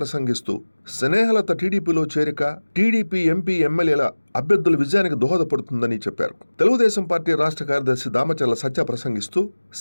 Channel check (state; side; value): inverted; both; correlation -1.00